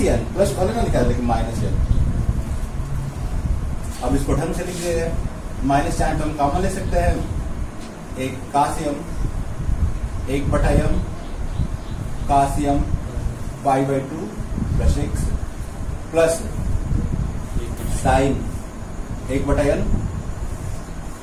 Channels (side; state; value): both; identical; correlation 1.00